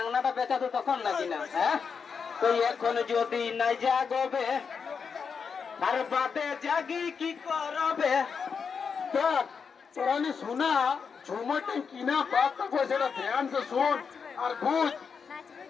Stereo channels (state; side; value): quieter; right; 6.0 dB